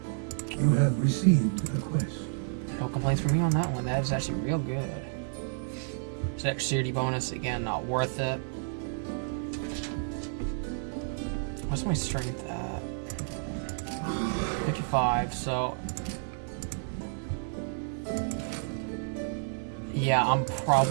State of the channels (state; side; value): silent; left; digital silence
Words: You have received a quest. No complaints from me on that one. That is actually real good. Dexterity bonus, again, not worth it. What's my strength at? 55, so... yeah, I'm